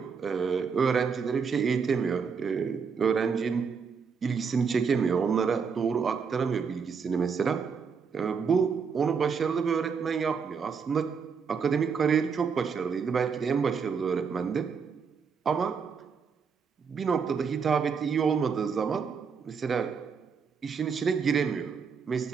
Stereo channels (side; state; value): left; quieter; 5.9 dB